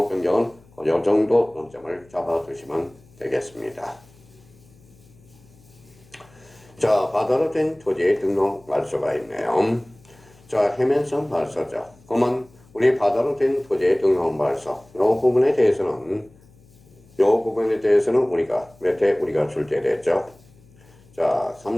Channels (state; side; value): noise; left; hum, 27 dB below the sound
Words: 변경은 이 정도 논점을 잡아두시면 되겠습니다. 자, 바다로 된 토지의 등록 말소가 있네요. 자, 해면성 말소죠. 그러면 우리 바다로 된 토지의 등록 말소, 이 부분에 대해서는 우리가 몇 회 우리가 출제됐죠? 자,